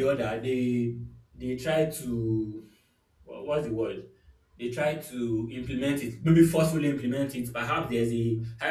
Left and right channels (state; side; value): identical; both; correlation 1.00